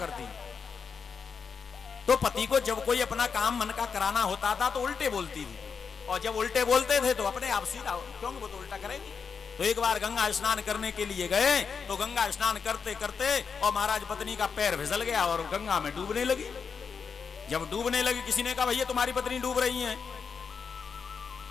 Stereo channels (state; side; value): quieter; right; 5.9 dB